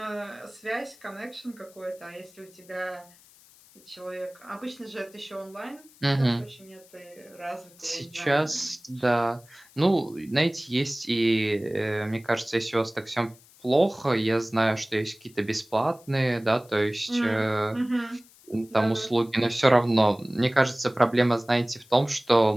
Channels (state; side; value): noise; left; hiss, 26 dB below the sound